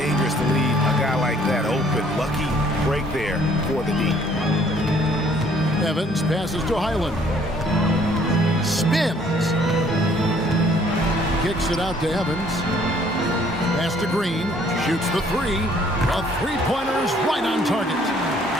to leave a guy like that open. Lucky break there for the D. Evans passes to Highland. Spins. Kicks it out to Evans. Pass to Green. Shoots the 3. A three-pointer's right on target.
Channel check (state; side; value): normal; both; correlation 0.61